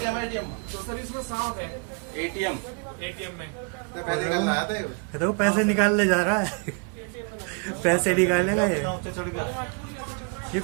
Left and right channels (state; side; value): quieter; left; 36.9 dB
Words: एटीएम में तो पैसे निकालने जा रहा है। पैसे निकालेगा ये